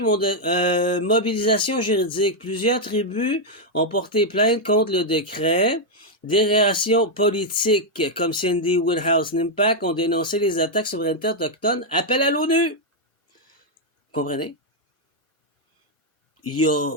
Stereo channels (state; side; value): normal; both; correlation -0.01